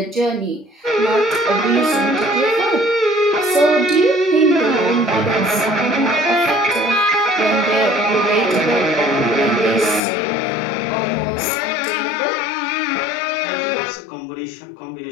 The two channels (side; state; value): right; drops out; at 10.0 s